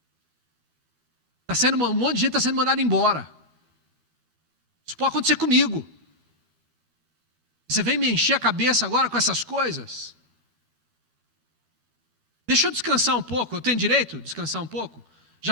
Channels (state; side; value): late; left; 12 ms